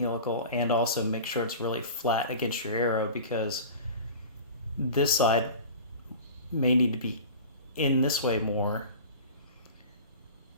and also make sure it's really flat against your arrow, because this side may need to be in this way more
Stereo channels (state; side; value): inverted; both; correlation -0.37